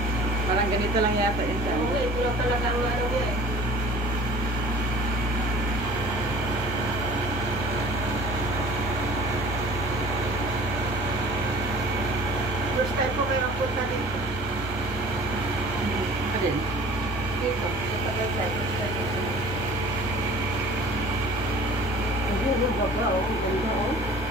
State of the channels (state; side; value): normal; both; correlation 0.46